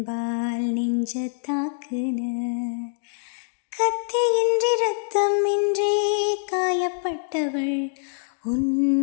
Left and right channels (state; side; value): silent; right; digital silence